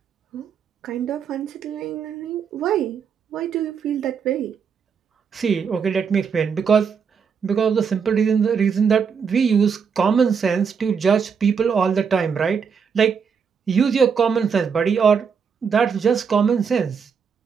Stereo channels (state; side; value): quieter; left; 6.4 dB